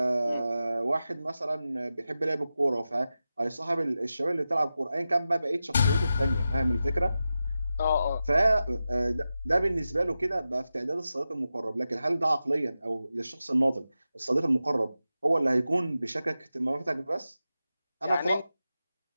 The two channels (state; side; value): inverted; both; correlation -0.92